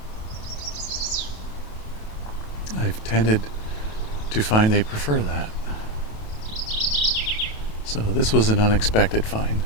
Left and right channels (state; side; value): late; right; 28 ms